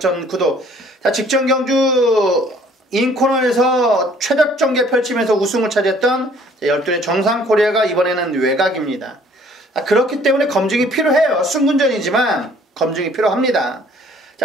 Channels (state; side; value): normal; both; correlation 0.57